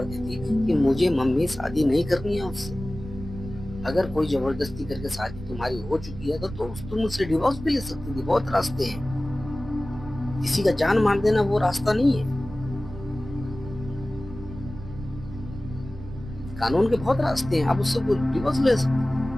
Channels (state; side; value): noise; right; rumble, 12 dB below the sound